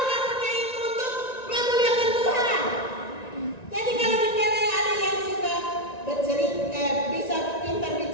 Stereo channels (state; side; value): late; right; 1.9 ms